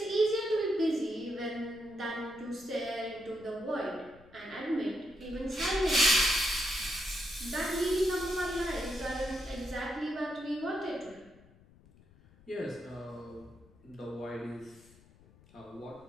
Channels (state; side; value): noise; left; rumble, 25 dB below the sound